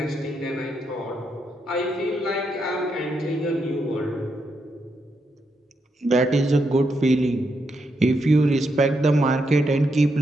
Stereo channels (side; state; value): both; normal; correlation 0.81